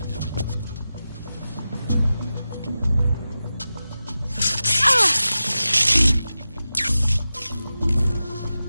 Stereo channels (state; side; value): inverted; both; correlation -0.93